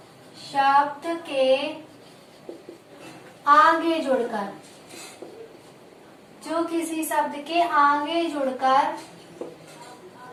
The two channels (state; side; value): identical; both; correlation 1.00